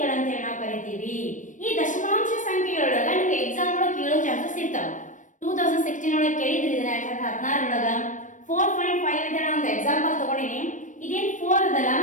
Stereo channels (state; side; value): late; right; 0.37 ms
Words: ನಾವು ಕರಿತೀವಿ. ಈ ದಶಮಾಂಶ ಸಂಖ್ಯೆಗಳೊಳಗ ನಿಮ್ಗೆ ಎಕ್ಸಾಮ್ ಒಳಗೆ ಕೇಳೋ ಚಾನ್ಸಸ್ ಇರ್ತಾವ. 2016 ಒಳಗೆ ಕೇಳಿದ್ರಿ ಇದನ್ನ, 2016 ಒಳಗ 4.5 ಅಂತ ನಾನು ಒಂದು ಎಕ್ಸಾಂಪಲ್ ತಗೊಂಡಿನಿ. ಇದೇನ್ 4 ಅದಲ್ಲ,